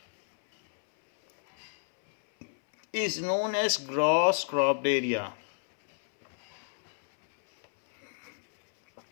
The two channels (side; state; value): right; silent; 58 dB below the other